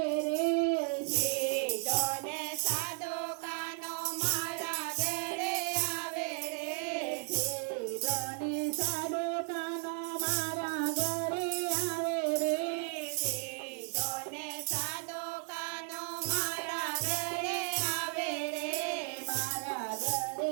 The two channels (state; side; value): quieter; left; 38.0 dB